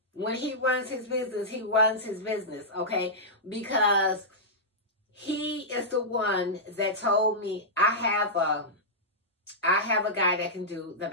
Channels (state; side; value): normal; both; correlation -0.11